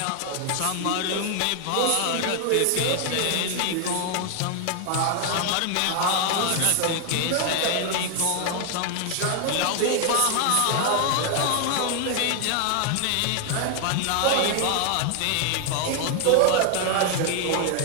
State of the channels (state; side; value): different; both; correlation 0.00